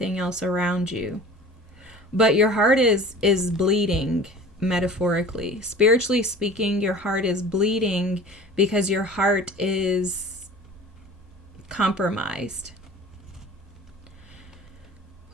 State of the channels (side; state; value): both; normal; correlation 0.41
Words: else around you. But your heart is bleeding, metaphorically. Spiritually speaking, your heart is bleeding because your heart is compromised.